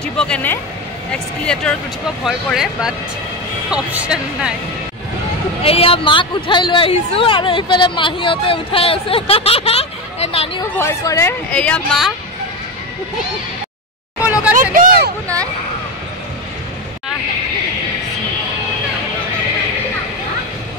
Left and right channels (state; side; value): normal; both; correlation 0.17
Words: কেনে এক্সক্লেটৰত উঠিব ভয় কৰে বাট option নাই এয়া মাক উঠাই লৈ আহিছো আৰু ইফালে মাহিয়তে উঠাই আছে এ নানিও ভয় কৰে এয়া মা লগা একো নাই